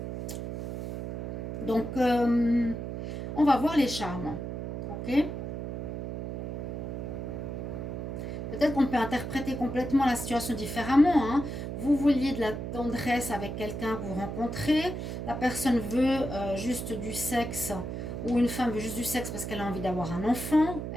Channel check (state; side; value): noise; right; hum, 5 dB below the sound